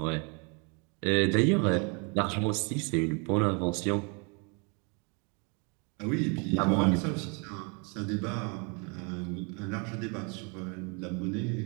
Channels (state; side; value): quieter; left; 33.9 dB